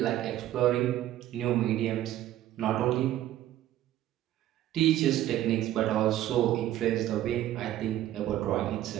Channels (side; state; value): left; quieter; 13.3 dB